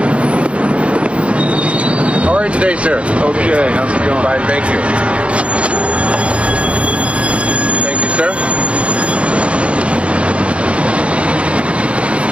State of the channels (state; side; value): late; left; 0.061 ms